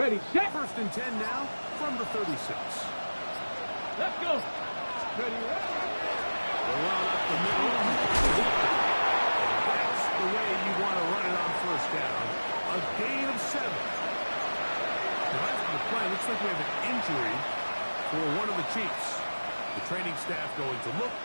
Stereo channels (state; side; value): inverted; both; correlation -1.00